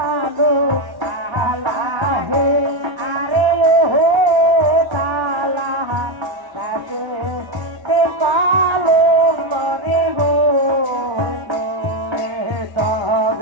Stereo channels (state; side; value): late; left; 1.0 ms